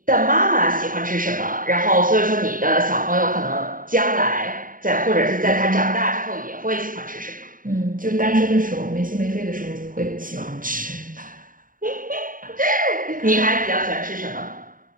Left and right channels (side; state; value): left; late; 0.40 ms